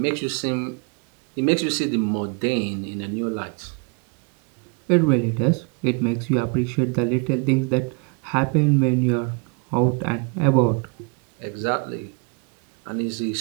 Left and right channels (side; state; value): left; quieter; 32.6 dB